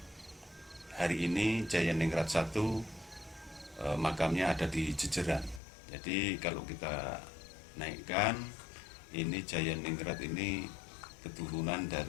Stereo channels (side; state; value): right; drops out; at 5.6 s